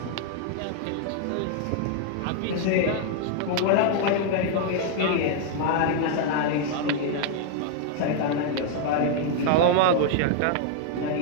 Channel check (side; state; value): both; different; correlation 0.00